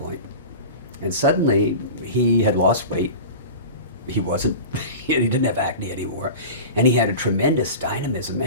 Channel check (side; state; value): both; inverted; correlation -0.32